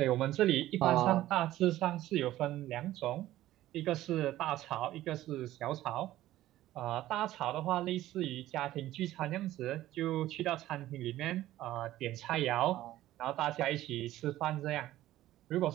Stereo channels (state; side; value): quieter; left; 14.7 dB